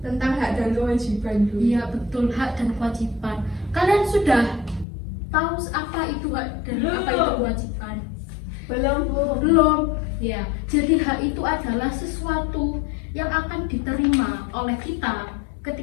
Tentang hak dan kewajiban, Bu. Iya, betul, hak dan kewajiban. Kalian sudah tahu apa itu hak dan apa itu kewajiban? Belum, Bu. Belum. Ya, jadi hak itu adalah sesuatu yang akan diterima oleh kita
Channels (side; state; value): right; drops out; at 4.9 s